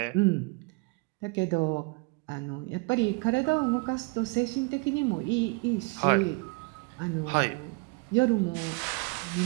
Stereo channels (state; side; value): quieter; left; 30.0 dB